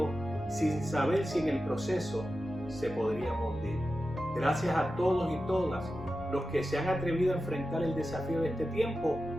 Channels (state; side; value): normal; both; correlation 0.92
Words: sin saber si en el proceso se podrían hundir. Gracias a todos y todas los que se han atrevido a enfrentar el desafío de este tiempo.